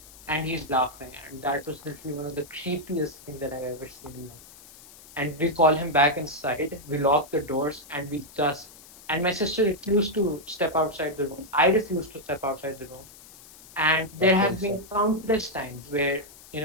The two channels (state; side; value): noise; left; hiss, 20 dB below the sound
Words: and he's laughing. And that was literally one of the creepiest things that I've ever seen in life. And we call him back inside. We lock the doors, and we just. And my sister refused to step outside the room. I refused to step outside the room. And there have been countless times where,